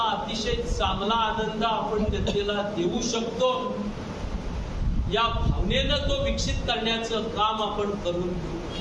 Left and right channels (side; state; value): both; identical; correlation 1.00